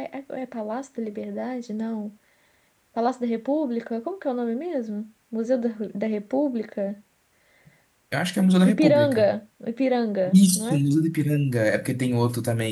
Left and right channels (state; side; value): identical; both; correlation 1.00